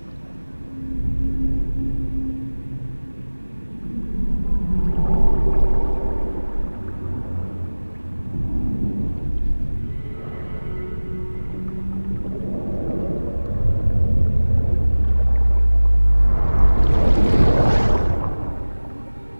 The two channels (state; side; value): inverted; both; correlation -1.00